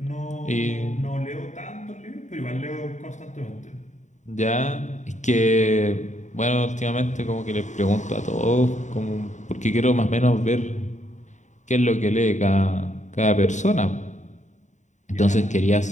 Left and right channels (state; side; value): late; right; 0.35 ms